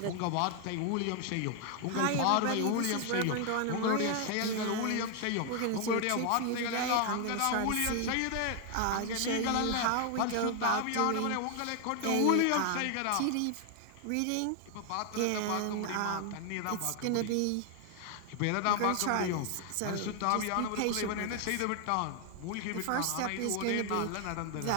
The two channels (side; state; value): both; different; correlation 0.00